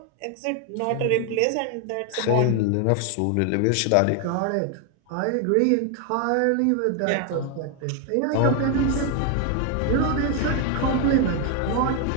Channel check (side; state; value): both; different; correlation 0.01